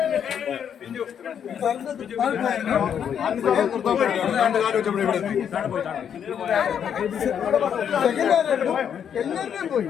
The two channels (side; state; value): right; quieter; 8.3 dB